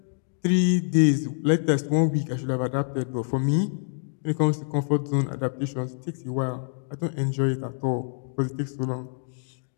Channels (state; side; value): silent; right; digital silence